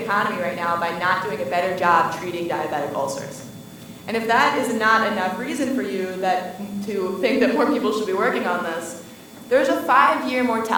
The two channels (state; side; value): identical; both; correlation 1.00